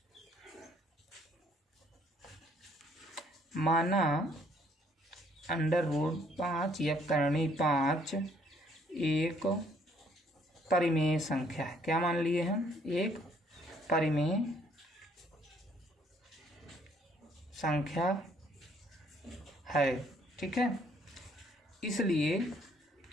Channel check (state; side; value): normal; both; correlation 0.65